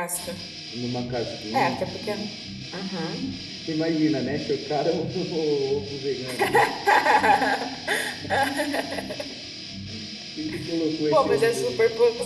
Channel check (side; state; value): both; identical; correlation 1.00